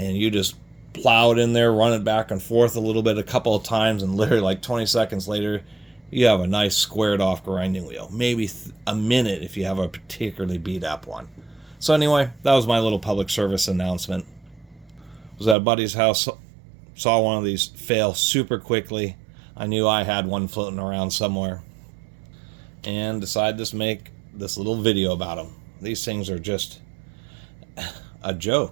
you just plow it in there, run it back and forth a little bit, a couple of times, and literally like 20 seconds later, you have a nice squared off grinding wheel. Maybe a minute if you have a particularly beat up one. So anyway, that was my little public service announcement. I was at a buddy's house, saw one of these fail super quickly. I knew I had one floating around somewhere, and decided to make this little video about them. These things are just a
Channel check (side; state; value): left; drops out; at 15.6 s